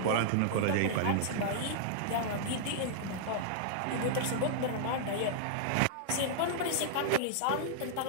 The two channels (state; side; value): different; both; correlation -0.01